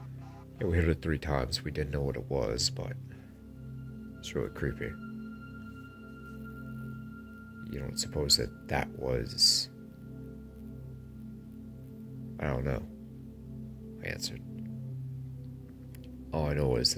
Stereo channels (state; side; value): identical; both; correlation 1.00